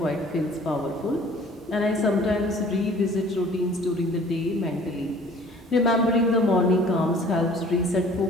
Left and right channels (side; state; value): both; normal; correlation 0.51